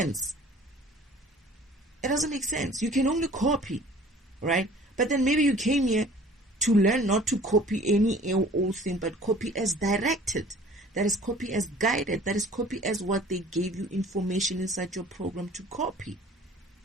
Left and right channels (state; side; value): normal; both; correlation 0.49